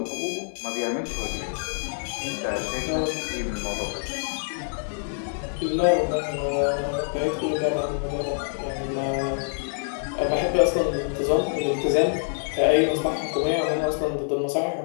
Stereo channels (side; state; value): right; silent; digital silence